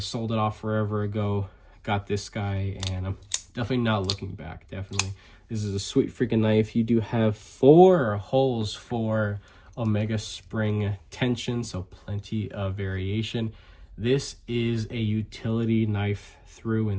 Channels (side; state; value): both; identical; correlation 1.00